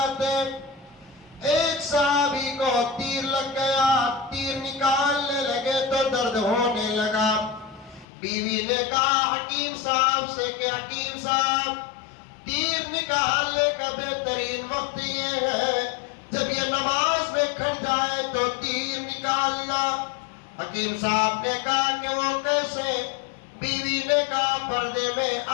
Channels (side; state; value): right; drops out; at 8.1 s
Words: ایک صحابی کو تیر لگ گیا، تیر نکالنے لگے تو درد ہونے لگا۔ بیوی نے کہا حکیم صاحب سے کہ حکیم صاحب، تیر نکالنے کا بہترین وقت یہ ہے جب یہ نماز میں کھڑ جائے تو تیر نکالنا۔ حکیم صاحب نے کہا کہ وہ کیسے؟ بیوی نے کہا پردے میں